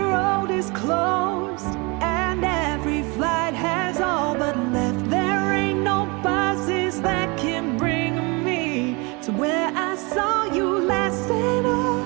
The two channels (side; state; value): left; quieter; 28.3 dB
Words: is closed and every flight has all but left, there ain't no buses that can bring me to where I saw you last. And all